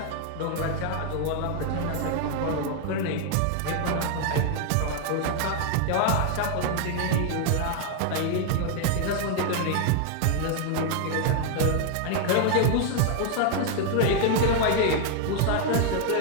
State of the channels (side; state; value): both; different; correlation 0.00